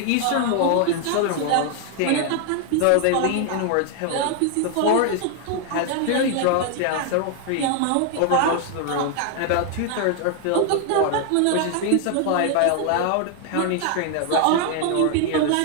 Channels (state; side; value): different; both; correlation 0.00